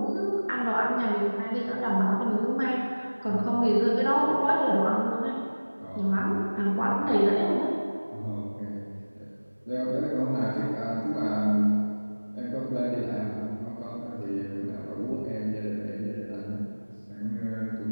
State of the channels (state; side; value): inverted; both; correlation -1.00